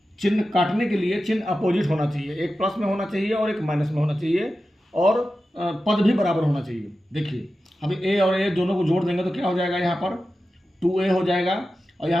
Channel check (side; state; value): both; normal; correlation 0.93